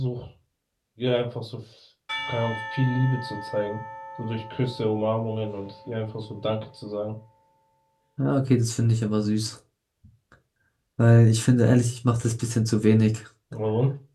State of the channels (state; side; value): identical; both; correlation 1.00